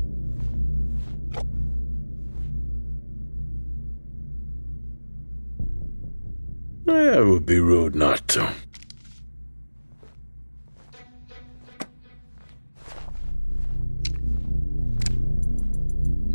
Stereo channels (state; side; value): inverted; both; correlation -1.00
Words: It would be rude not to.